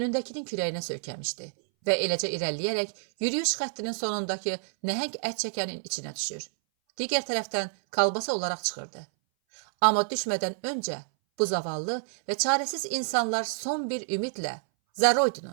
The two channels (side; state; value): left; silent; 59 dB below the other